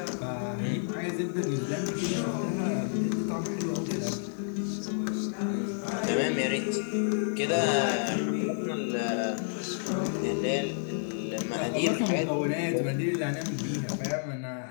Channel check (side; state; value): right; silent; digital silence